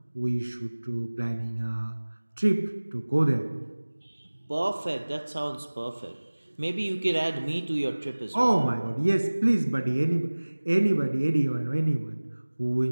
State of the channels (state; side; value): inverted; both; correlation -1.00